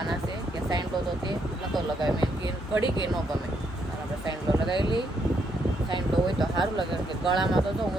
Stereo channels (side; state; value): both; normal; correlation 0.75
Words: છે કે સાઈનલો તો તે નહોતો લગાવ્યો. મેં કે ઘડી કે ન ગમે, અને આપણે સાઈનલો લગાવી લઈએ. સાઈનલો હોય તો સારું લાગે, કે ગળામાં તો જો